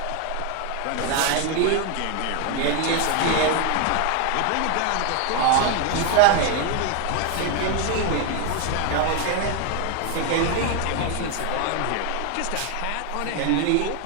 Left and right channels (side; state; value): both; different; correlation 0.01